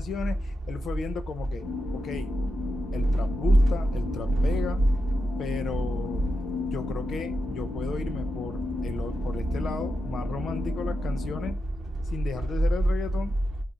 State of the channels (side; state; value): both; normal; correlation 0.88